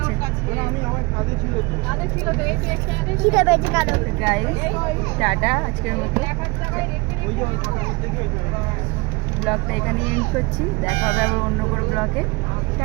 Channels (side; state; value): left; quieter; 26.1 dB